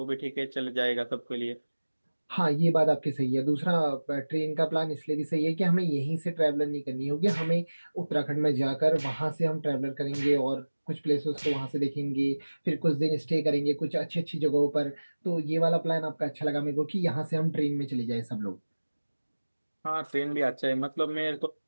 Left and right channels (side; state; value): both; inverted; correlation -1.00